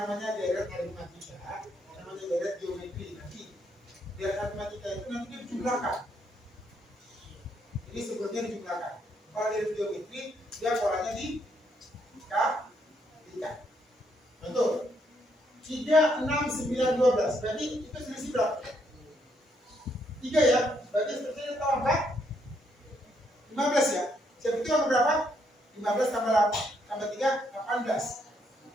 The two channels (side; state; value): both; normal; correlation 0.74